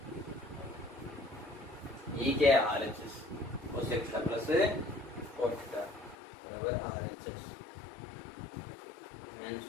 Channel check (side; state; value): right; drops out; at 6.2 s